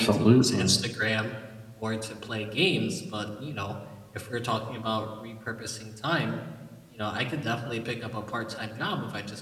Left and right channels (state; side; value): identical; both; correlation 1.00